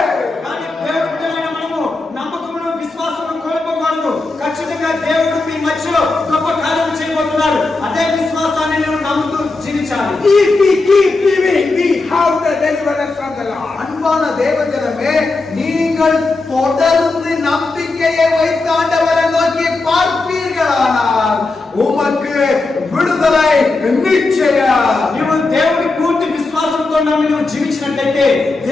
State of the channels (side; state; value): right; quieter; 3.5 dB